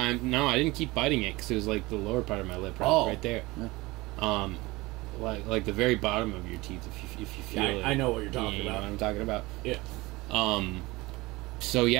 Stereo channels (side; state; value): left; quieter; 21.5 dB